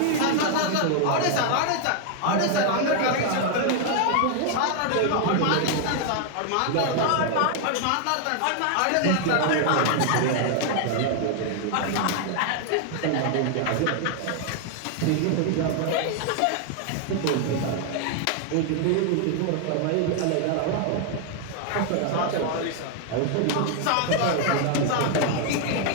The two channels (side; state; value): both; different; correlation 0.00